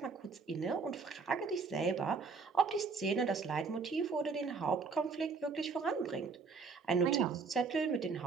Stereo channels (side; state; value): left; quieter; 4.8 dB